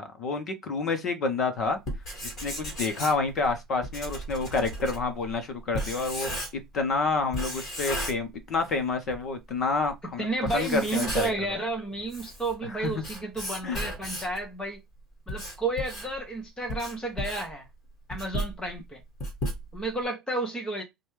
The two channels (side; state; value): both; normal; correlation 0.39